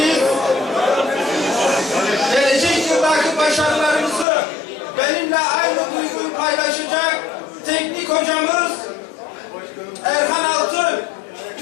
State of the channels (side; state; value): right; drops out; at 4.2 s